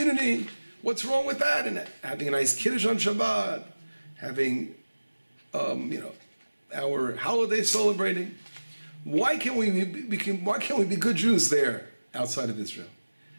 What's wrong with that? And having a nice kiddush on Shabbat, having, our holiday celebrating. Why can't we be good Jews there outside of Israel?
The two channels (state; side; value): inverted; both; correlation -1.00